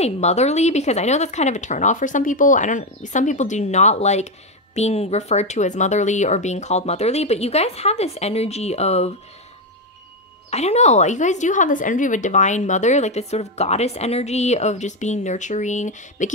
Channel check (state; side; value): normal; both; correlation 0.08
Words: motherly, because I know that's kind of a turnoff for some people. Some people do not like being referred to as motherly or being called motherly, but you guys have this energy of, I don't know, you guys do have this energy of a divine mother, like this sort of goddess energy of just being nurturing,